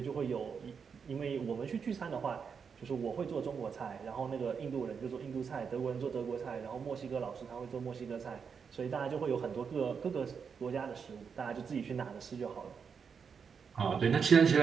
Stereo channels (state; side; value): quieter; left; 6.2 dB